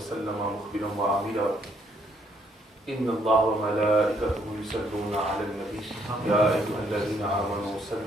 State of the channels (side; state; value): both; normal; correlation 0.69